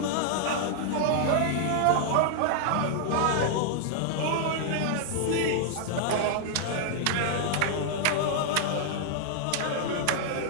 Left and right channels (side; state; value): both; different; correlation -0.01